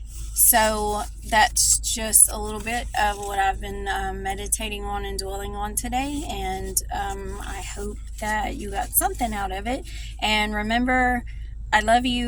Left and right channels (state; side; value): identical; both; correlation 1.00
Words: So that's just a little bit of what I've been meditating on and dwelling on today. And I hope that you got something out of it. And remember, I love